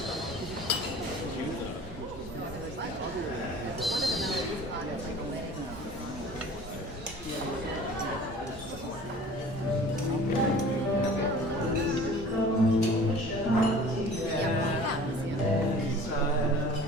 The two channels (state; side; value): normal; both; correlation 0.45